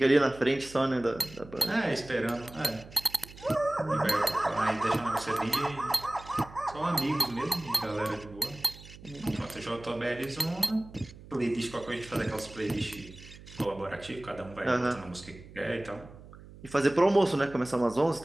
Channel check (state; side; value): noise; right; hum, 18 dB below the sound